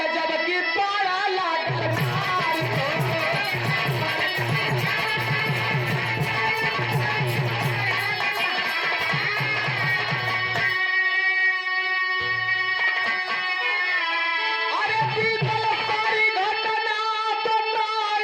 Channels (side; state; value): both; identical; correlation 1.00